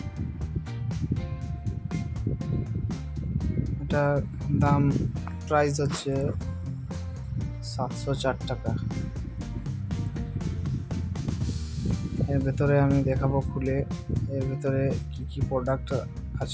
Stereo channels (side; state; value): both; identical; correlation 1.00